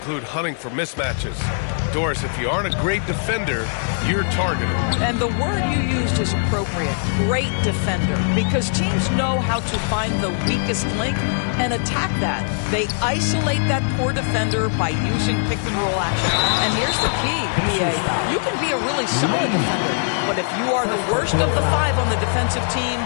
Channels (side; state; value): right; silent; digital silence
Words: hunting for mismatches. Doris, if you aren't a great defender, you're targeted. And the word you used is appropriate. Great defender. Because teams know how to find the weakest link and attack that. They isolate that poor defender by using pick-and-roll action. And here's the key, PA. You can be a really solid defender, but if you are the worst of the five on the defensive team,